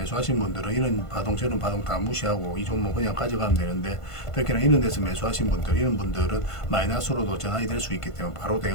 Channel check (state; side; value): late; right; 1.5 ms